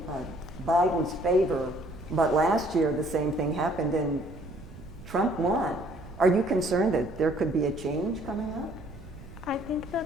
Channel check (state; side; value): noise; right; rumble, 17 dB below the sound